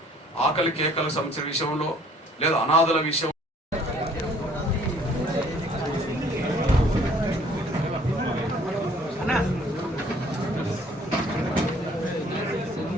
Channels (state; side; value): normal; both; correlation 0.58